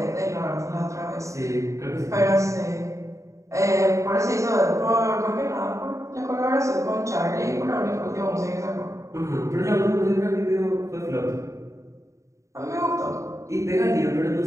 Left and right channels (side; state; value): left; late; 0.15 ms